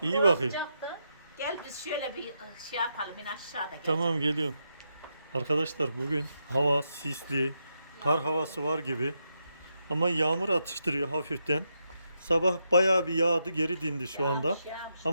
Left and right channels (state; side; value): inverted; both; correlation -0.83